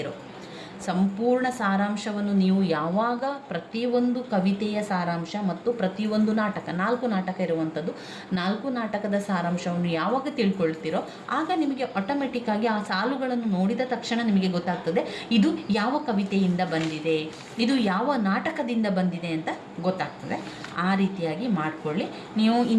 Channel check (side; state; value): both; identical; correlation 1.00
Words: ಸಂಪೂರ್ಣ ಸಾರಾಂಶವನ್ನು ನೀವು ಯಾವಾಗ ಪ್ರತಿಯೊಂದು ಕವಿತೆಯ ಸಾರಾಂಶ ಮತ್ತು ಪ್ರತಿಯೊಂದು ನಾಟಕ 4 ನಾಟಕ ಇರುವಂಥದ್ದು, 4 ನಾಟಕದ ಸಾರಾಂಶವನ್ನು ಯಾವಾಗ ತಿಳ್ಕೊಳ್ತೀರೋ ಆಗ ನಿಮಗೆ ಆಟೋಮೆಟಿಕ್ಕಾಗಿ ಆ ಸಾಲುಗಳನ್ನು ನೋಡಿದ ತಕ್ಷಣ ನಿಮಗೆ ಗೊತ್ತಾಗ್ತದೆ ಇದು ಯಾವ ಕವಿತೆಯಿಂದ ಬಂದಿದೆ, ಇದು ಯಾವ ನಾಟಕದಿಂದ ಬಂದಿದೆ ಅಂತ ಗೊತ್ತಾಗ್ತದೆ. ಆ ರೀತಿಯಾಗಿ ಮಾಡಿಕೊಳ್ಳಿ. ನೀವು